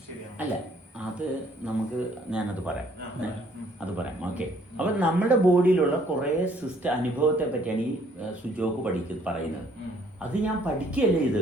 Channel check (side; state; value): both; normal; correlation 0.63